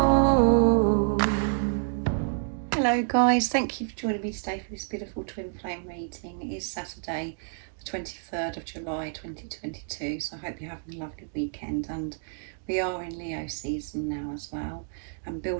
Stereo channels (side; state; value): left; silent; digital silence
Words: Hello guys, thank you for joining me today for this beautiful twin flame reading. It is Saturday the 23rd of July 2022, so I hope you're having a lovely weekend, and we are in Leo season now as well, and